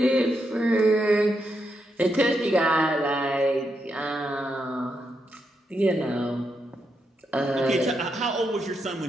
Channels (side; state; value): both; normal; correlation 0.82